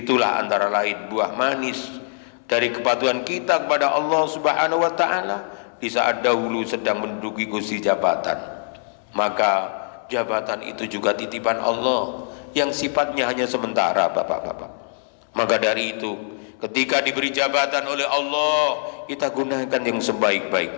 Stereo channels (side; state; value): right; silent; 64 dB below the other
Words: antara lain buah manis dari kepatuhan kita kepada Allah Subhanahu wa taala di saat dahulu sedang menduduki kursi jabatan. Maka jabatan itu juga titipan Allah yang sifatnya hanya sementara, Bapak-bapak. Maka dari itu, ketika diberi jabatan oleh Allah, kita gunakan yang